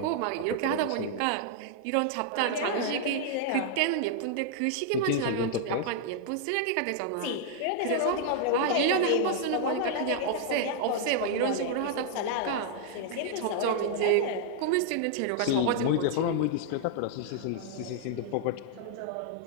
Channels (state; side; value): different; both; correlation -0.01